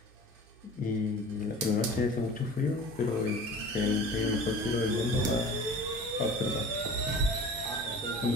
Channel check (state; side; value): normal; both; correlation 0.40